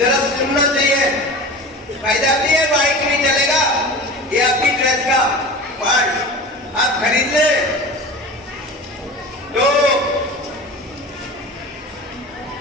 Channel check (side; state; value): both; normal; correlation 0.34